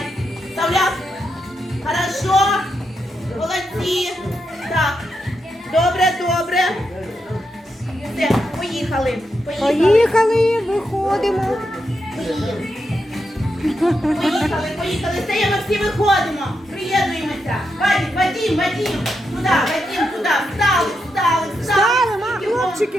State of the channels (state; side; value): normal; both; correlation 0.84